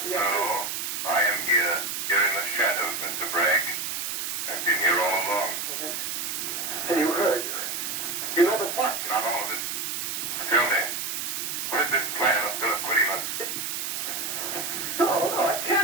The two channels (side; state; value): right; noise; hiss, 3 dB below the sound